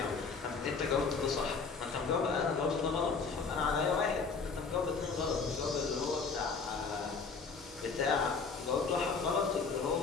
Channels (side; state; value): right; quieter; 4.9 dB